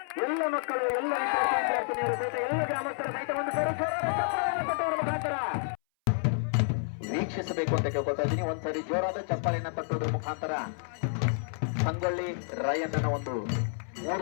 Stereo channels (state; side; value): silent; right; 58 dB below the other